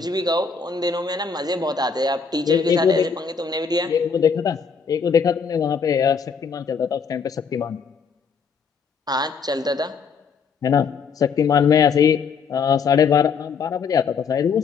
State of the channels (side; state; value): right; quieter; 5.8 dB